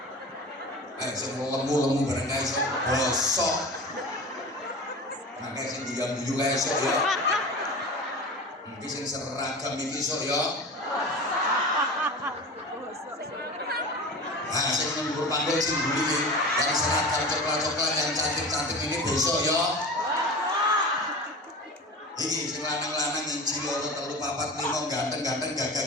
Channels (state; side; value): normal; both; correlation 0.32